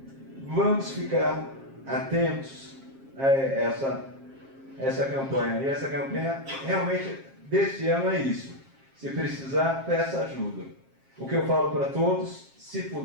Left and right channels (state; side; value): late; left; 7.4 ms